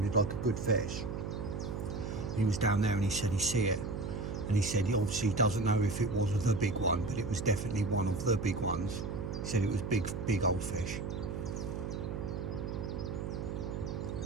like a good fish. He was down there and he said he see it, and he said he obviously doesn't know if it was the big one, but it was definitely one of the big ones. He said it was big old fish.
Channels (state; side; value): noise; right; hum, 4 dB below the sound